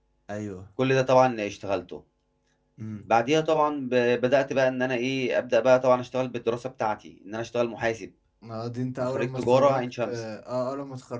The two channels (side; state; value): both; identical; correlation 1.00